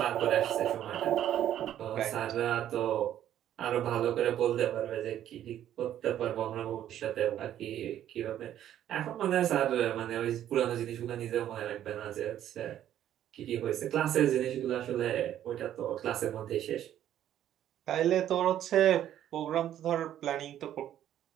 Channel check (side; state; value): left; quieter; 11.3 dB